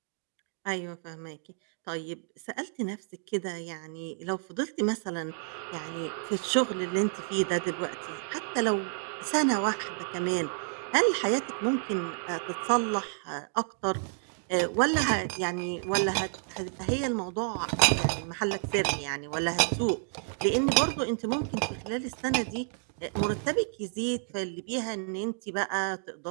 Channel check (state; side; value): silent; left; 58 dB below the other